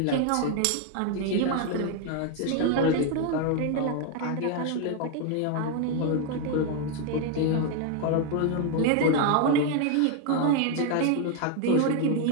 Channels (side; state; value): both; different; correlation 0.01